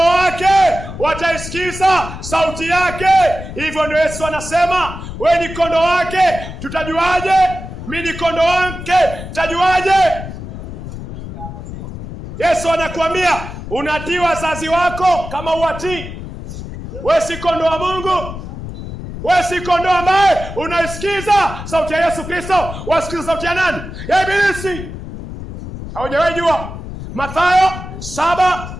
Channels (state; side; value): noise; left; rumble, 10 dB below the sound